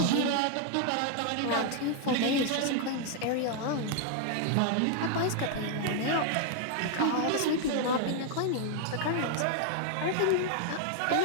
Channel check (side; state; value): both; different; correlation 0.00